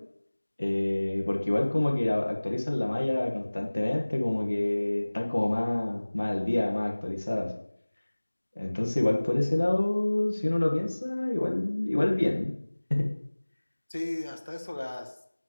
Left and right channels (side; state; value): both; inverted; correlation -1.00